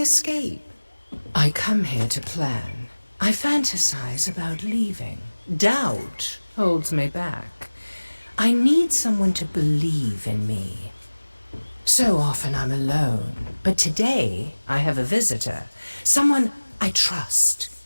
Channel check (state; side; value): inverted; both; correlation -1.00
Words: I come here to plan. I fantasize about leaving. Doubt holds me back. I need someone to believe in me. So often I'm alone, but today I have a visitor. Someone I trust.